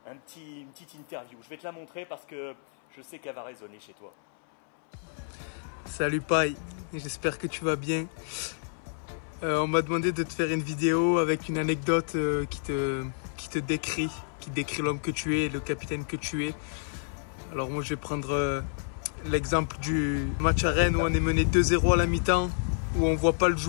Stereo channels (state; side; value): silent; right; 58 dB below the other